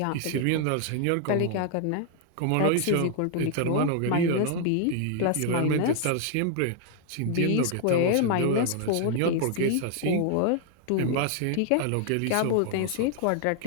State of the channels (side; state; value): both; different; correlation 0.00